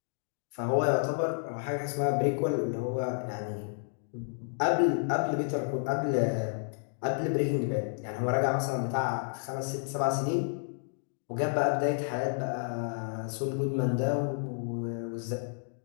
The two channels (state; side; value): silent; right; digital silence